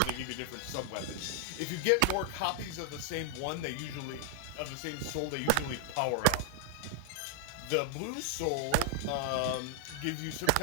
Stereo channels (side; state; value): both; different; correlation -0.01